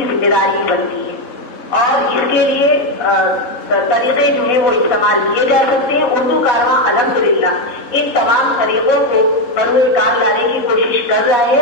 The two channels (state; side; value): late; right; 3.7 ms